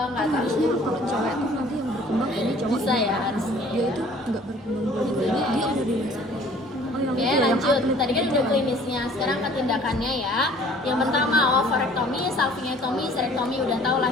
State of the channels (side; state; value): both; normal; correlation 0.52